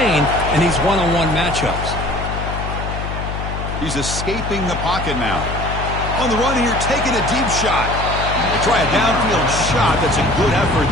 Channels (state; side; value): noise; left; hum, 5 dB below the sound